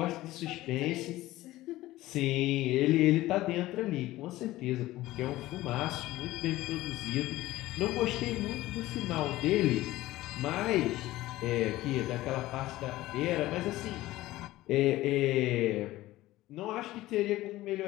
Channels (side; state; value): right; quieter; 16.8 dB